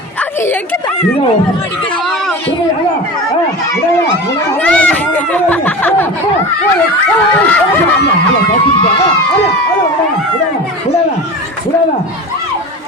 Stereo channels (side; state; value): both; normal; correlation 0.31